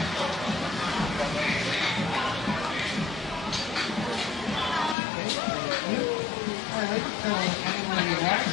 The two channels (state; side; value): drops out; right; at 5.0 s